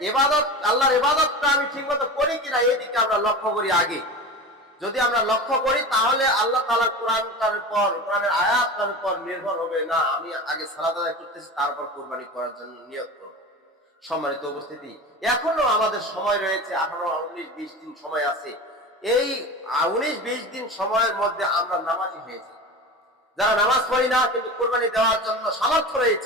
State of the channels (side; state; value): both; normal; correlation 0.30